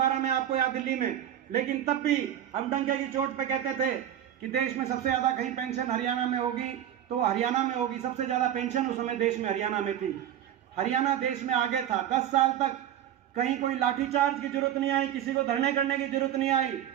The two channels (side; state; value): left; quieter; 10.8 dB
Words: में, आपको याद, दिल्ली में, लेकिन तब भी हम डंके की चोट पे कहते थे कि देश में सबसे ज्यादा कहीं पेंशन हरियाणा में होगी तो हरियाणा में होगी। सबसे ज्यादा पेंशन उस समय देश में हरियाणा में थी। हरियाणा देश में आगे था। 10 साल तक कहीं कोई लाठीचार्ज की जरूरत नहीं आई, किसी को धरने करने की जरूरत नहीं आई,